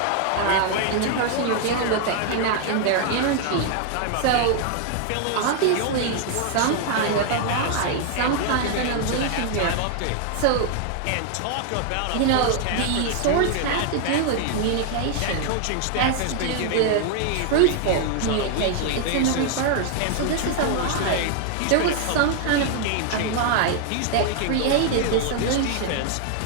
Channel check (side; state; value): both; different; correlation 0.00